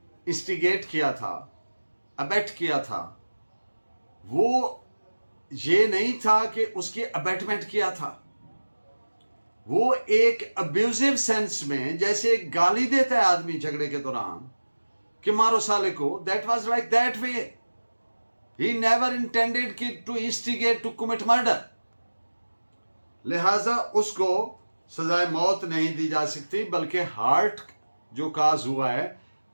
इंस्टिगेट किया था, अबेट किया था, वो ये नहीं था कि उसकी अबेटमेंट किया था। वो एक अब्यूजिव सेंस में, जैसे एक गाली देता है आदमी झगड़े के दौरान कि मारो साले को, that was like that way. He never intended to instigate to commit murder. लिहाजा उसको सजाए मौत नहीं दी जा सकती, बल्कि हार्ट जो काज हुआ है,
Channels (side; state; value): both; inverted; correlation -1.00